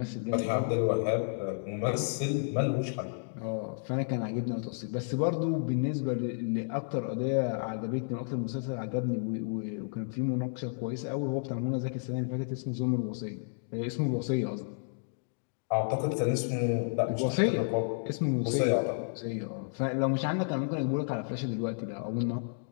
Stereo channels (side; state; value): right; silent; digital silence